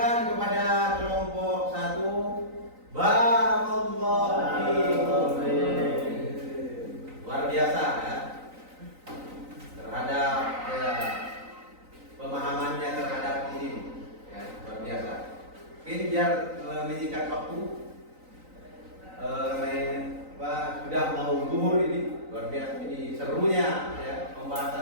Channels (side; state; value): left; late; 3.9 ms